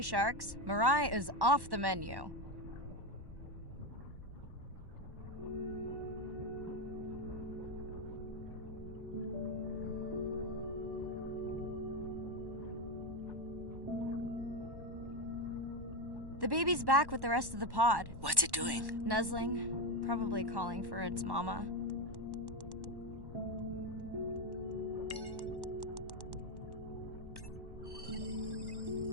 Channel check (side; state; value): left; late; 1.1 ms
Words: sharks. Mirai is off the menu. The baby's back with the rest of the pod. What's it doing? Nuzzling, probably calling for its mama.